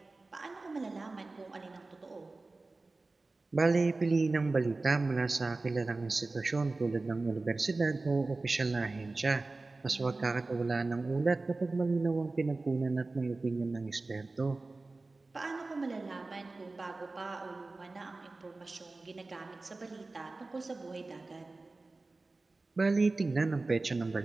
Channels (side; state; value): left; quieter; 3.4 dB